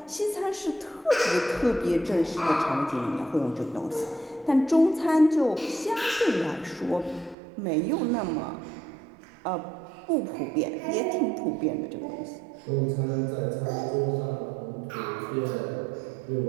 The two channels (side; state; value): left; drops out; at 7.4 s